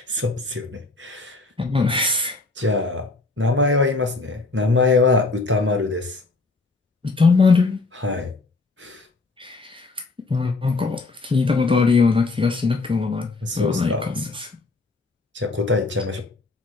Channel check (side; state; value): right; quieter; 3.6 dB